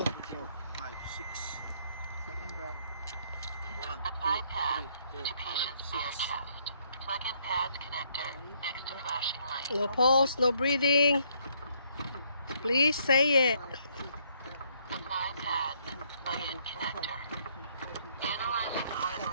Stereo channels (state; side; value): inverted; both; correlation -0.68